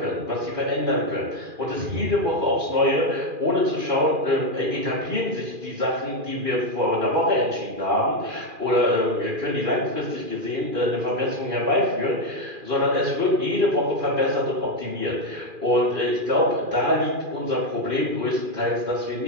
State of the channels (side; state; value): left; late; 2.4 ms